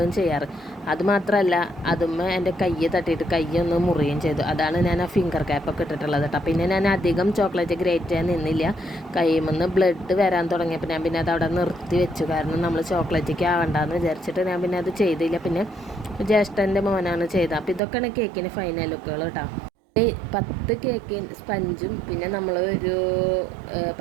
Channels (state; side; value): drops out; left; at 17.8 s